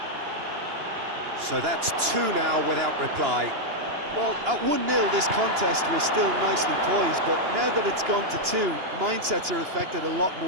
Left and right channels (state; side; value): late; left; 2.9 ms